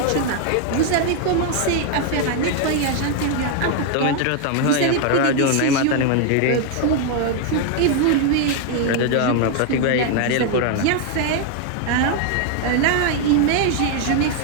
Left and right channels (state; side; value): different; both; correlation 0.00